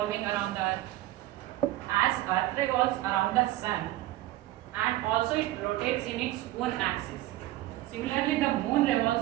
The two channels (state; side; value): quieter; left; 15.9 dB